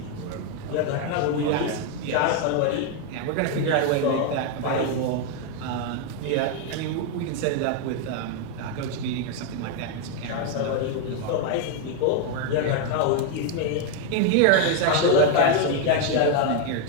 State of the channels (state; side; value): different; both; correlation 0.01